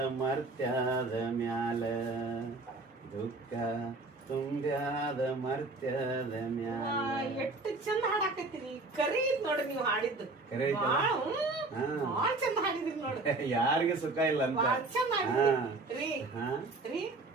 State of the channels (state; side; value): quieter; left; 3.3 dB